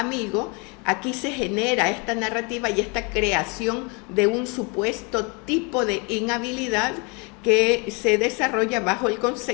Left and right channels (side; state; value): right; quieter; 31.3 dB